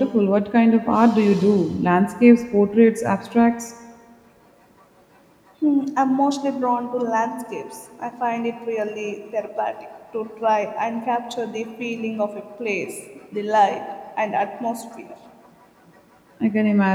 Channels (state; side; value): identical; both; correlation 1.00